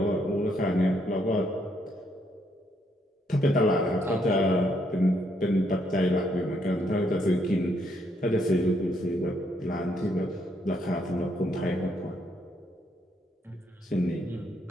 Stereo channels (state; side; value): normal; both; correlation 0.73